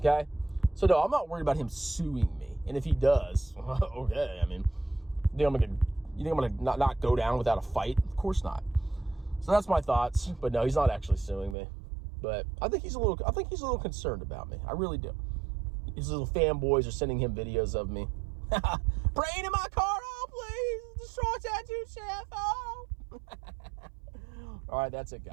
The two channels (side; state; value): left; drops out; at 11.6 s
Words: So no, I'm not worried about him suing me. And if he does, okay, I mean, you think I'm gonna not go down without a fight? Of course not. So that's my thoughts. But no, he's not actually suing me. But I think he's a little concerned about me. I really do. His little fanboys are sending him videos of me. Brain in my car, oh please! Destroy tattoo chef, oh! All right, that's it,